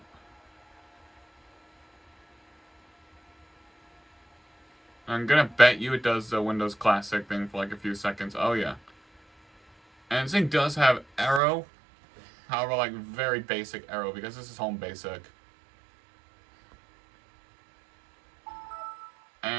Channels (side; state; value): left; drops out; at 11.4 s